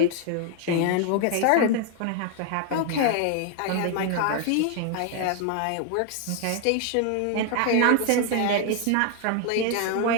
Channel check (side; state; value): both; different; correlation 0.00